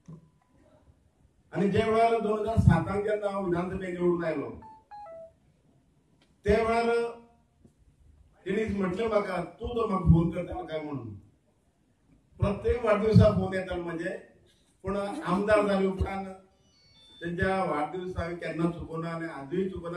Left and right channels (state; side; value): identical; both; correlation 1.00